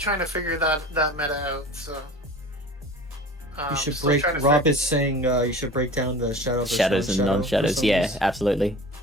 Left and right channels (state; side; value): normal; both; correlation 0.39